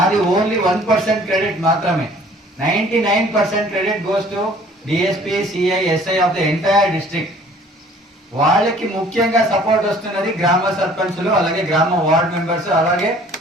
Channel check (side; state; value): both; normal; correlation 0.53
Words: ఓన్లీ 1% క్రెడిట్ మాత్రమే. 99% credit goes to DSP, CI, SI of the entire district. వాళ్ళకి ముఖ్యంగా సపోర్ట్ వస్తున్నది గ్రామ సర్పంచులు, అలాగే గ్రామ వార్డ్ మెంబర్స్, అలాగే